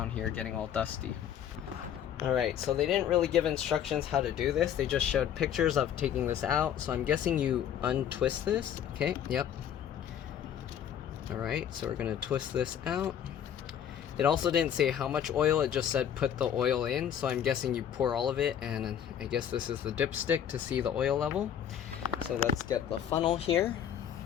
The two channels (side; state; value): right; quieter; 9.4 dB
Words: here getting all dusty. Alright, so they didn't really give instructions how to do this. They just showed pictures of taking this out. So I'm guessing you untwist this. Okay, yep. Alright, so we're gonna twist this out. It also didn't say how much oil, it just said put the oil in, so I'm guessing you pour all of it, and I guess this is the dipstick to see the oil level. So let's get the funnel here.